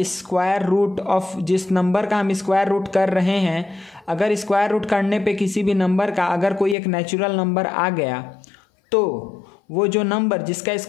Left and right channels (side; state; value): right; drops out; at 6.8 s